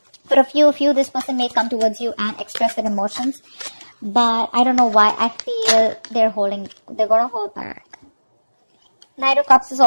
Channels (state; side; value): inverted; both; correlation -1.00